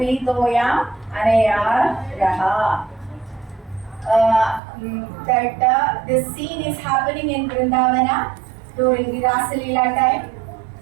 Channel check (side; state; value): left; drops out; at 4.6 s